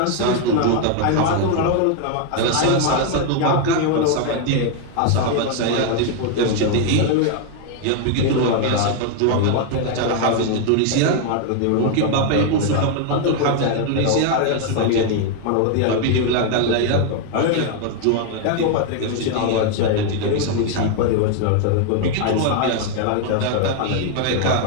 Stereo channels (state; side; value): different; both; correlation 0.00